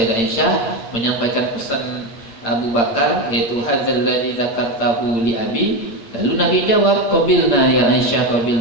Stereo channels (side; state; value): right; late; 8.8 ms